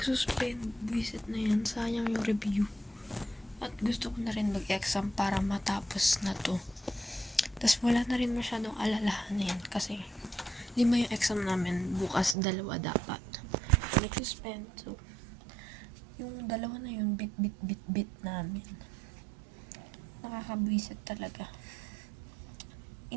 Buisit na yan. Sayang yung review. At gusto ko na rin mag-exam para matapos na to. Tapos wala na rin masyadong alalahanin. Kasi, 5 yung exam namin. Bukas 2 dapat. Nagsuspend. So, yung 2 na yun, bit namin. Nakakabwisit talaga.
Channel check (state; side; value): drops out; left; at 12.4 s